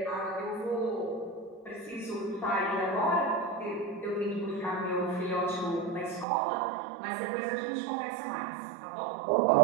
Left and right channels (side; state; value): left; drops out; at 6.2 s